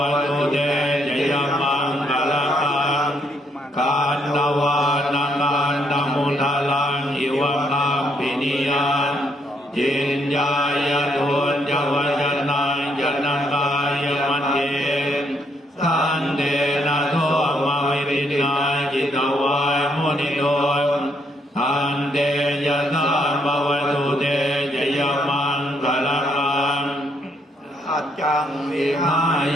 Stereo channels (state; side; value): normal; both; correlation 0.72